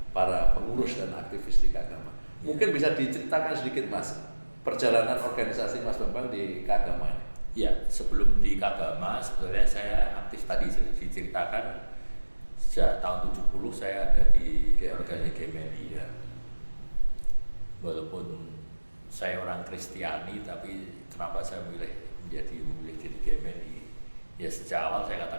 para pengurus dan aktivis di keagamaan. Mungkin bisa diceritakan sedikit, Mas, perjalanan organisasi Mas Bambang di keagamaan. Ya, sebelum di keagamaan sebenarnya saya aktif tadi sudah diceritakan sejak tahun 70 saya ada di organisasi GMNI ya. Walaupun saya orang Kristiani, tapi kenapa saya memilih jadi GMNI? Ya sejak awal saya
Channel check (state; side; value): inverted; both; correlation -1.00